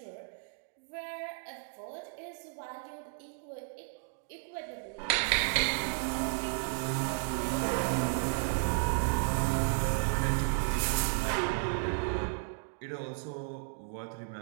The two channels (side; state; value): left; silent; 55 dB below the other